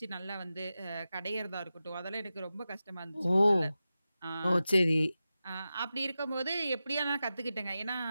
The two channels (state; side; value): inverted; both; correlation -0.93